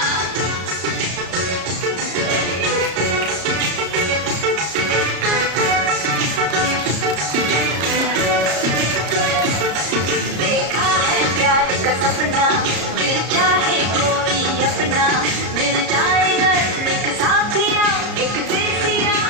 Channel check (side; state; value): left; late; 34 ms